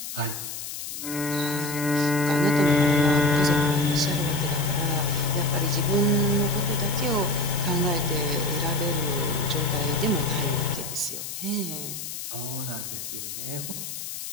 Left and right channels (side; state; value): left; noise; hiss, 8 dB below the sound